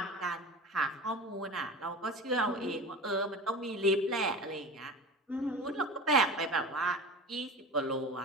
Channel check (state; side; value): normal; both; correlation 0.33